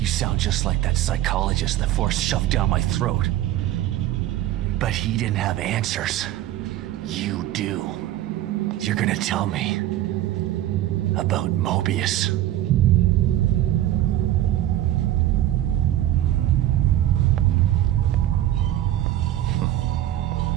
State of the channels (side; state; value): left; quieter; 13.3 dB